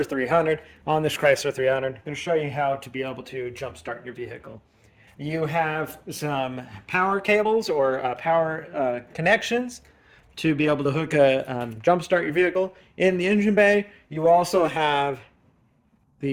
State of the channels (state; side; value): identical; both; correlation 1.00